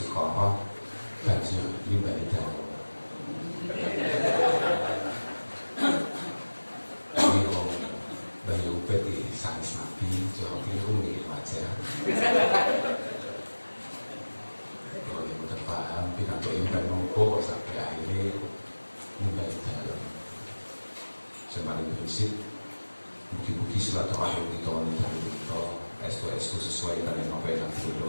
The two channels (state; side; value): inverted; both; correlation -1.00